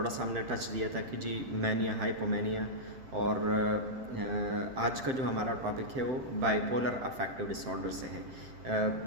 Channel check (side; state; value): left; late; 7.6 ms